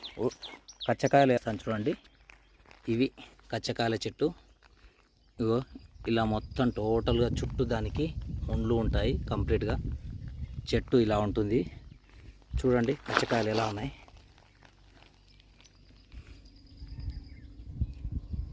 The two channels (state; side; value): identical; both; correlation 1.00